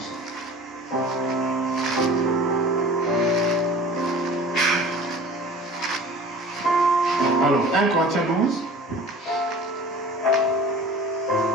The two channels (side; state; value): both; normal; correlation 0.43